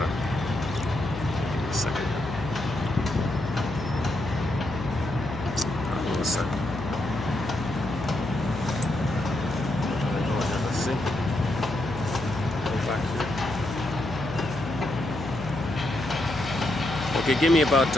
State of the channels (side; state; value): left; noise; hum, 9 dB below the sound